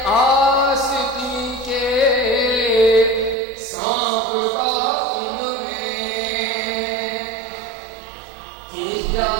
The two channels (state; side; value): drops out; left; at 3.4 s